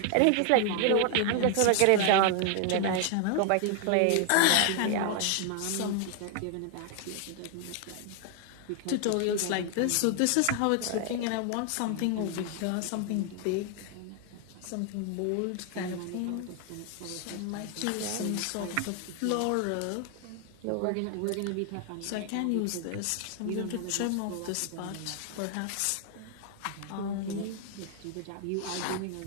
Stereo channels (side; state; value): both; different; correlation 0.00